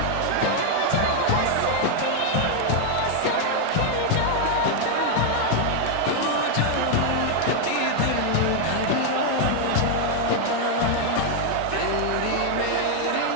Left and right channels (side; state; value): both; different; correlation 0.00